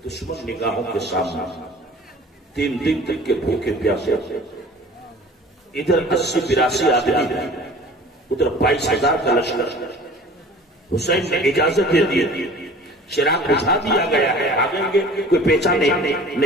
دشمن نگاہوں کے سامنے 3 دن تک کے بھوکے پیاسے، ادھر 80-82 آدمی ہیں، ادھر 22,000 کا لشکر۔ حسین نے اجازت دے دی، چراغ بجھا دیا گیا ہے، آگیں گے کوئی پہچان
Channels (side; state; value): both; normal; correlation 0.45